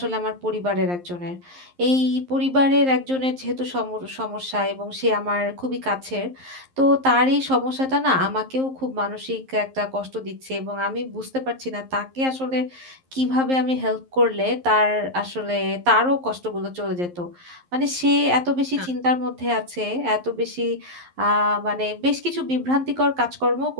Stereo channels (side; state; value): left; late; 11 ms